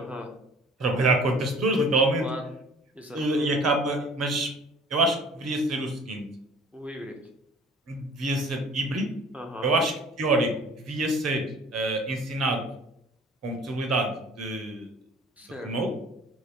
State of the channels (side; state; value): both; normal; correlation 0.49